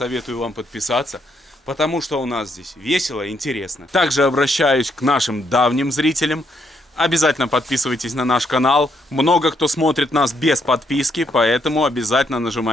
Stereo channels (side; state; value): both; normal; correlation 0.74